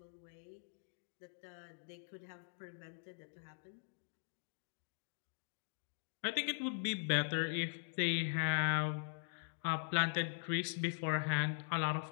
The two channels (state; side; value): silent; right; digital silence